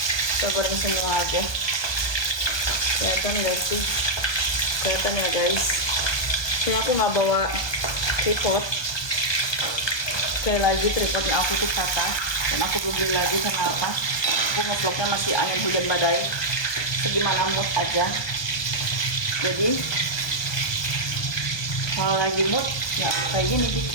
Kita goreng semua aja. Kelihatan nggak sih? Kelihatan ya guys. Ini aku nggak bawa tripod. Sekali lagi tripodnya aku tuh patah. Dan aku belum beli lagi karena apa? Aku ngevlognya masih angin hujan badai. Segimana mood aja. Jadi kalau lagi mood ya kayak gini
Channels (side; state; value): right; late; 1.2 ms